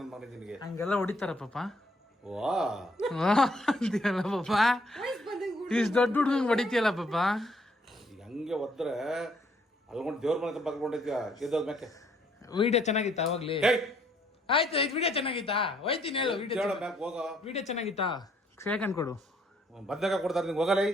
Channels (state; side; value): normal; both; correlation 0.67